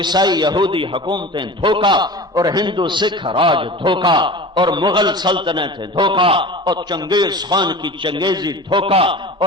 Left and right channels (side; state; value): both; normal; correlation 0.36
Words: یہودی حکومتیں دھوکا، اور ہندو سکھ راج دھوکا، اور مغل سلطنتیں دھوکا، اور چنگیز خان کی چنگیزی دھوکا،